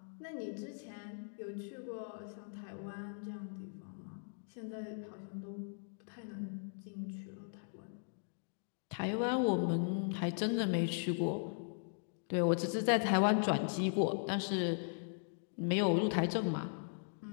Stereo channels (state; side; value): silent; right; digital silence